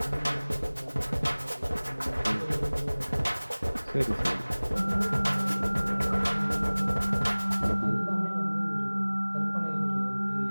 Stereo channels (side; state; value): both; inverted; correlation -1.00